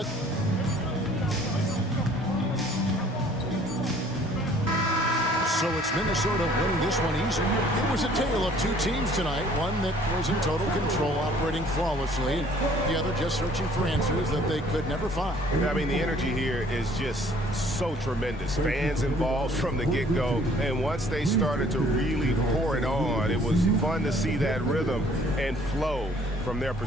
So it's Minnesota winning this one easy. It was a tale of 2 teams tonight. One that was in total control, operating flawlessly, and the other just searching for answers that they could never find. I mean, the energy here is just so tremendous. Fans involved from the get-go, and once they started to really pour it on, it was fun to see that rhythm and flow from their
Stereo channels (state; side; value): normal; both; correlation 0.56